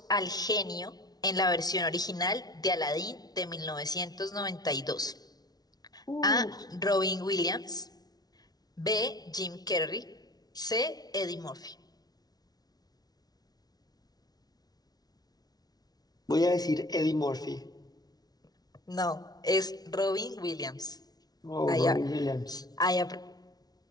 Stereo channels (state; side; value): late; right; 0.19 ms